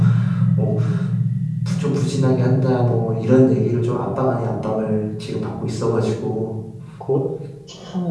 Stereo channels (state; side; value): identical; both; correlation 1.00